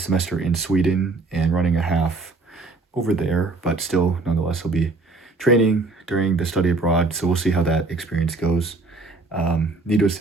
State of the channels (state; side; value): quieter; left; 3.6 dB